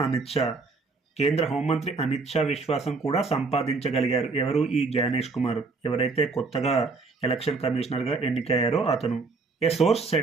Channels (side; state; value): left; quieter; 4.0 dB